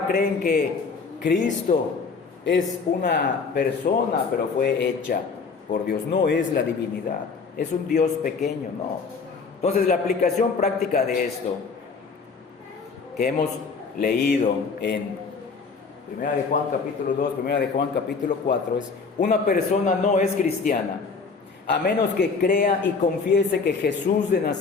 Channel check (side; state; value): right; quieter; 4.9 dB